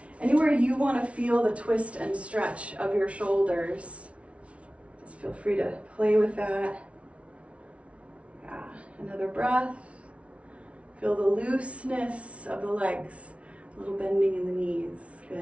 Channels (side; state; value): left; late; 0.062 ms